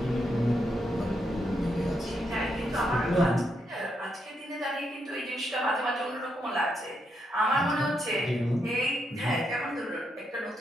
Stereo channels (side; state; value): both; normal; correlation 0.80